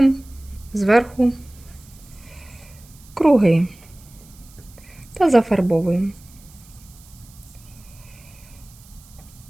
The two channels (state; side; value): noise; right; hiss, 24 dB below the sound